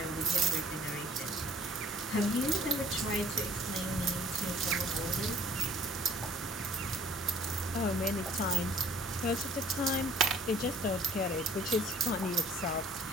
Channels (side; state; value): both; normal; correlation 0.54